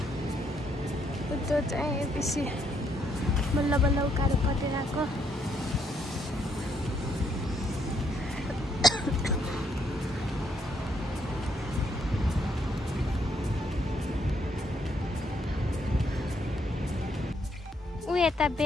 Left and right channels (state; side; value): normal; both; correlation 0.73